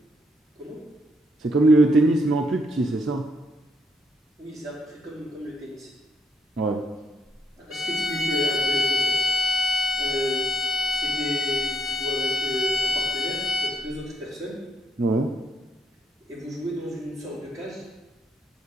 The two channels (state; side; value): normal; both; correlation 0.75